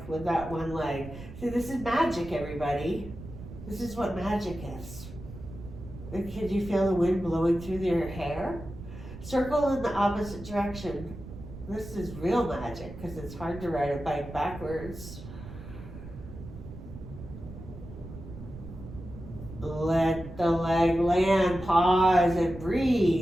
with that one leg. See, this is magic, everybody. This is what magic is. And can you feel the wind blowing through your hair? Circle in the opposite direction. This is real magic because it's hard to ride a bike backwards. Let the leg land, pause and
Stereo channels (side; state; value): right; noise; rumble, 13 dB below the sound